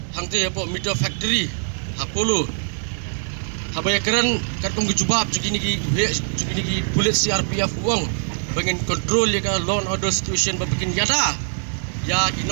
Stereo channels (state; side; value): silent; left; digital silence